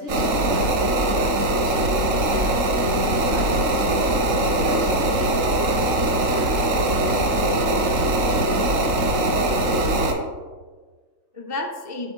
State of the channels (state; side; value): late; left; 3.7 ms